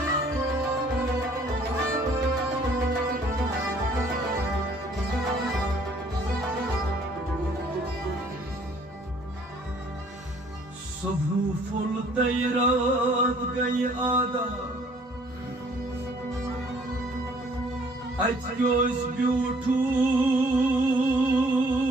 सुबह फुल रात गई आदा अच ब्यूठू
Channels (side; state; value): both; normal; correlation 0.59